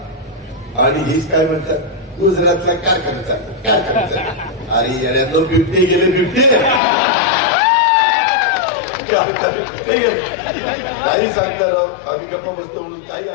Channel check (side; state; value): right; drops out; at 6.8 s